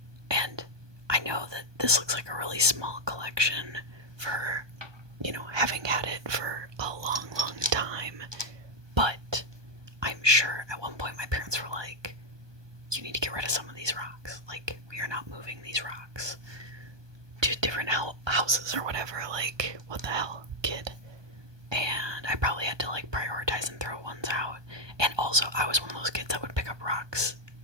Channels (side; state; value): left; late; 1.2 ms